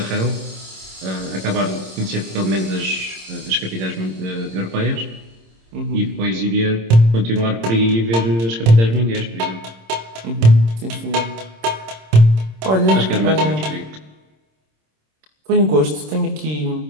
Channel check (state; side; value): late; left; 26 ms